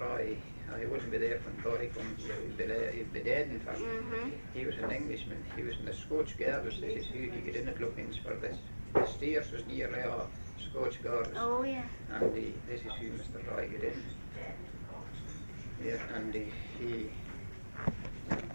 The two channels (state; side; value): inverted; both; correlation -1.00